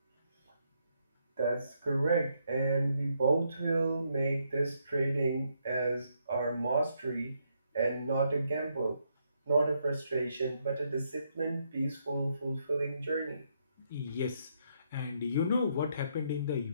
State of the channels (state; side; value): inverted; both; correlation -0.76